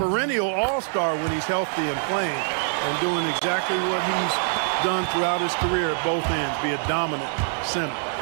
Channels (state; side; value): silent; left; digital silence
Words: all-star when he's healthy and playing and doing exactly what he's done throughout his career at both ends, be a dominant center.